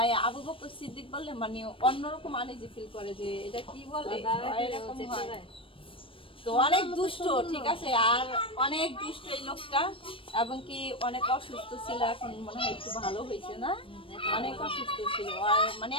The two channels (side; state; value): right; late; 0.26 ms